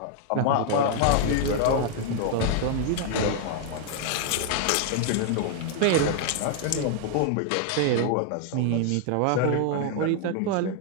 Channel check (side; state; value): both; different; correlation 0.00